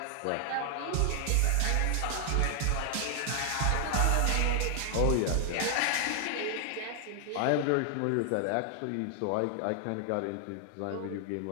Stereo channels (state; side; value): different; both; correlation 0.00